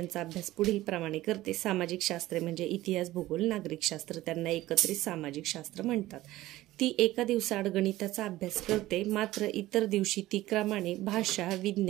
अभ्यास पुढील प्रमाणे करते। सामाजिक शास्त्रे म्हणजे इतिहास, भूगोल, नागरिक शास्त्र, त्यांना एकत्रित सामाजिक शास्त्र म्हणतात। ती एका दिवसाआड गणिताचा अभ्यास करते, मात्र इतर दिवशी ती क्रमाने भाषा,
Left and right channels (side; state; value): left; quieter; 16.4 dB